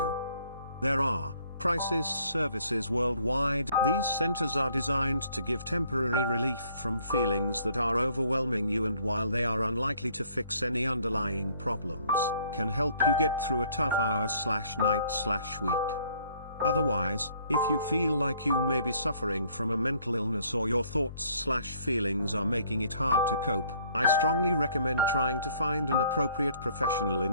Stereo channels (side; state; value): both; inverted; correlation -0.61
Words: There are crisis services worldwide. These centers are designed to give temporary relief from feelings that are overwhelming you, and while they are unlikely to fix any underlying problems, can help you get through a tough hour/night/week. Otherwise, if you feel like you may be suffering from a mental illness or your thoughts/feelings are making it hard to cope, I strongly recommend trying to find an appropriate professional